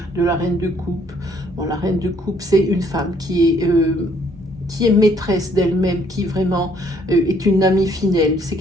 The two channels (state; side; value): normal; both; correlation 0.64